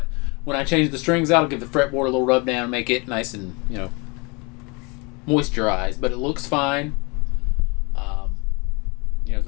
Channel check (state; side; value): quieter; right; 29.0 dB